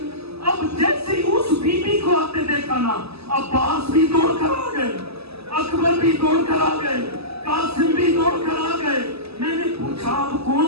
اب جیسے ہی اس بی بی کو آتے دیکھا نا, عباس بھی دوڑ کر آ گئے, اکبر بھی دوڑ کر آ گئے, قاسم بھی دوڑ کر آ گئے. میں نے پوچھا اب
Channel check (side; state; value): left; late; 0.78 ms